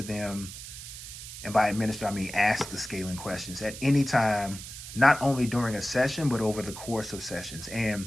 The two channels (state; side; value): noise; right; hiss, 12 dB below the sound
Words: And by administer, I mean ask the scaling questions at any time, not only during a session, but over the course of sessions.